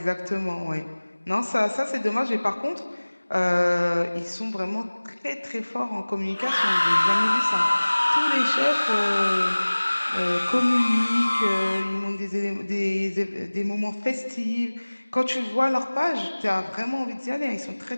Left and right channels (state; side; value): inverted; both; correlation -1.00